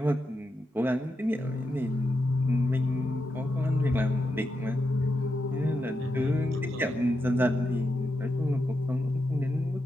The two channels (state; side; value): normal; both; correlation 0.86